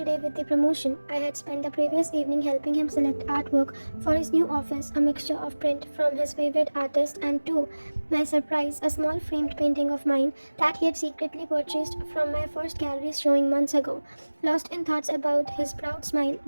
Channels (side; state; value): both; inverted; correlation -1.00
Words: day with the promotion. I had spent the previous evening helping him select artwork for his new office, a mixture of print from his favorite artist and, to my surprise, a small framed painting of mine that he had secretly purchased from my first gallery showing months ago. Lost in thoughts about his proud smile